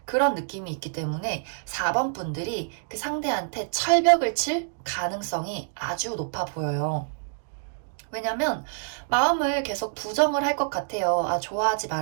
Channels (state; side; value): silent; left; digital silence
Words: 그런 느낌이 있기 때문에 4번 분들이 그 상대한테 철벽을 칠 가능성이 아주 높아 보여요. 왜냐면 마음을 계속 부정을 할 것 같아요. 아, 좋아하지